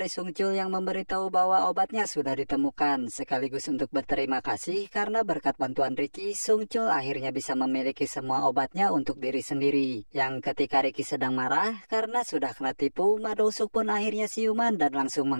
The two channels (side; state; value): both; inverted; correlation -1.00